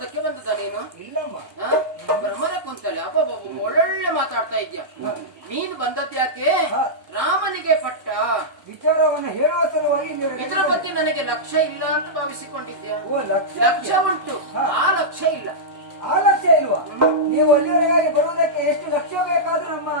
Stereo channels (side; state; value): left; late; 1.1 ms